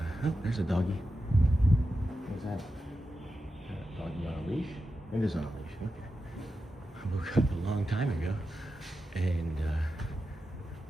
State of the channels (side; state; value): both; normal; correlation 0.90